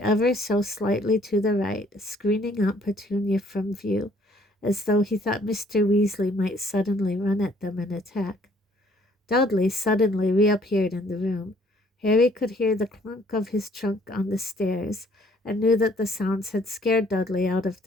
so slightly to the right, screening Aunt Petunia from view, as though he thought Mr. Weasley might suddenly run at them and attack. Dudley suddenly reappeared in the room. Harry could hear the clunk of his trunk on the stairs, and knew that the sounds had scared Dudley out of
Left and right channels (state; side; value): normal; both; correlation 0.61